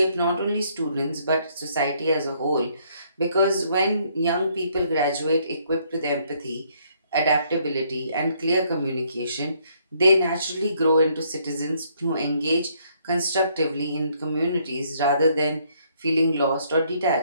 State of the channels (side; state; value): both; inverted; correlation -0.68